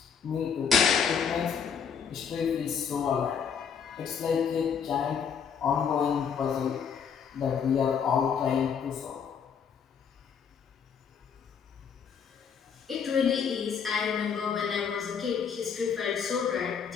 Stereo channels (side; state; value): right; quieter; 7.0 dB